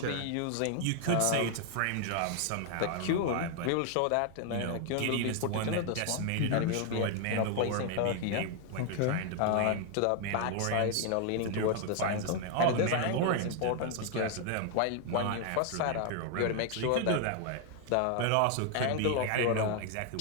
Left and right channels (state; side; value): different; both; correlation 0.00